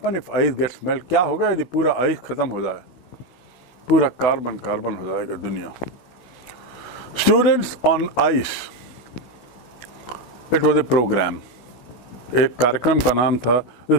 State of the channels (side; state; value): right; late; 16 ms